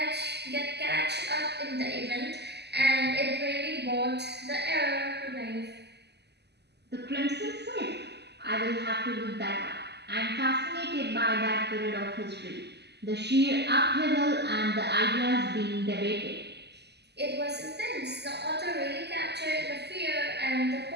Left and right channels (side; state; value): left; late; 0.49 ms